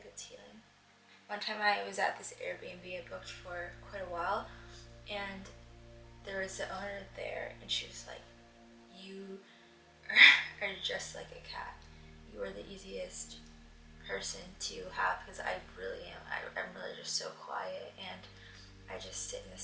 it's healing. One time I was at this Airbnb I booked for quite a while, and there was the owner there, and she was like, you are just like a cat. You are the easiest person to have, because I really am. I'm really just so quiet, and I just sit in the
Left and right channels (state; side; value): identical; both; correlation 1.00